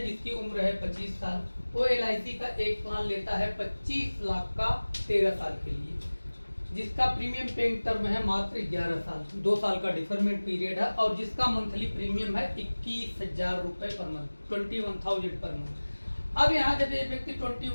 जिसकी उम्र है 25 साल, वो एलआईसी का एक प्लान लेता है 25 लाख का 13 साल के लिए, जिसका प्रीमियम पेइंग टर्म है मात्र 11 साल, 2 साल का डिफरमेंट पीरियड है और जिसका मंथली प्रीमियम है 21,000 रुपये पर मंथ, 21,000 पर मंथ। अब यहाँ जब ये व्यक्ति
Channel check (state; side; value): inverted; both; correlation -1.00